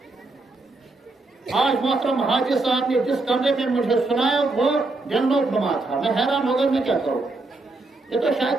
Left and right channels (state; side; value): quieter; left; 3.2 dB